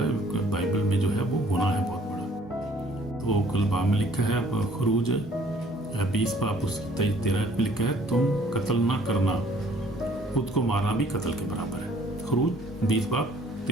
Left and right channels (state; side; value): normal; both; correlation 0.58